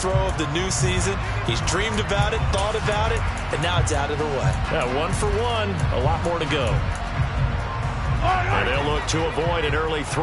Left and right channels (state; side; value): identical; both; correlation 1.00